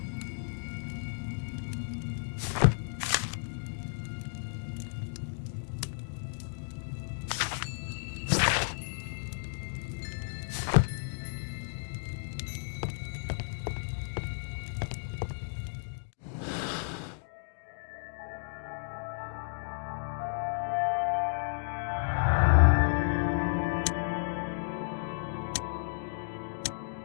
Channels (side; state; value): right; silent; digital silence